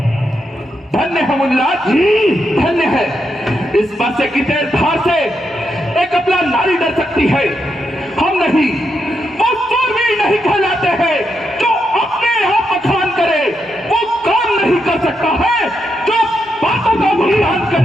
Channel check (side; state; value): both; normal; correlation 0.83